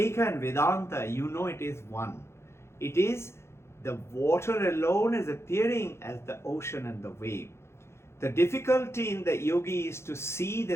and Vedanta, you know it is one. It is the water alone is appearing as the ocean and the wave. The difficulty in the yogi is to see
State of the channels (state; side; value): late; right; 0.13 ms